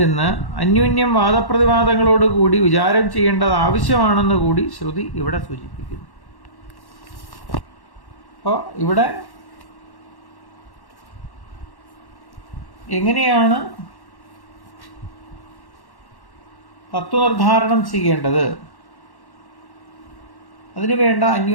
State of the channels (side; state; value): right; late; 1.1 ms